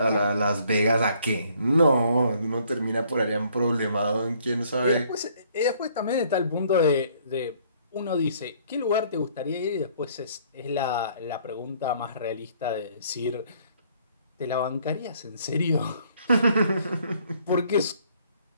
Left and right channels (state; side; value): inverted; both; correlation -0.62